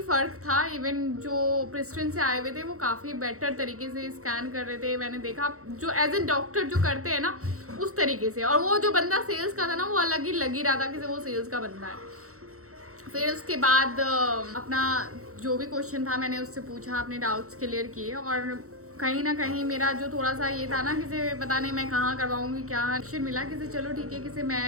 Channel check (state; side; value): late; left; 0.64 ms